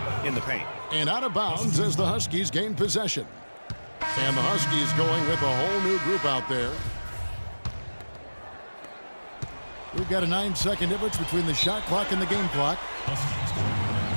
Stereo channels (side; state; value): both; inverted; correlation -1.00